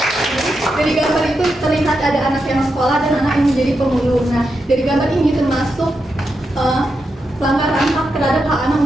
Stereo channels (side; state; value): both; normal; correlation 0.86